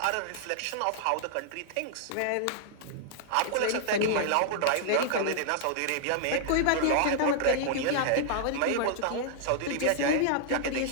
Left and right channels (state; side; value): different; both; correlation -0.01